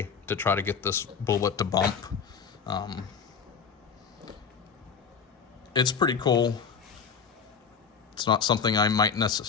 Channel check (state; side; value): quieter; right; 6.3 dB